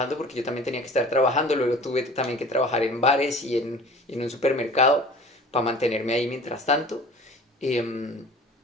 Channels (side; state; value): both; normal; correlation 0.44